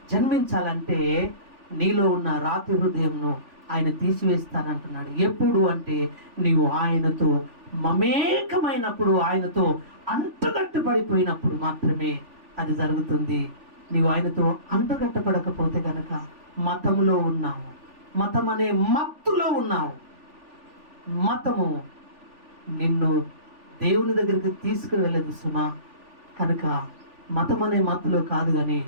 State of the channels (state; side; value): late; left; 3.4 ms